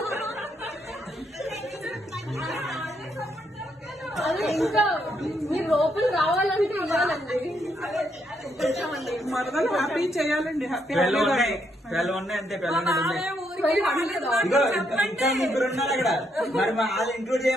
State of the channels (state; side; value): normal; both; correlation 0.76